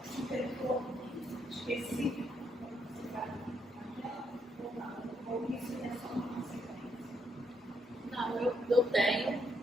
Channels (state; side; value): normal; both; correlation 0.75